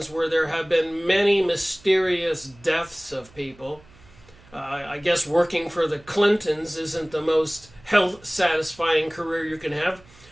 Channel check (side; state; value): right; noise; hum, 26 dB below the sound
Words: where there have been many mysterious deaths of people. I guess working for the Clintons isn't the most health-satisfying career you can have.